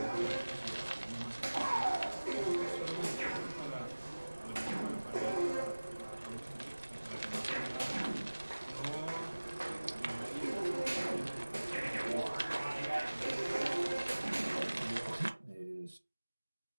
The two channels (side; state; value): both; inverted; correlation -1.00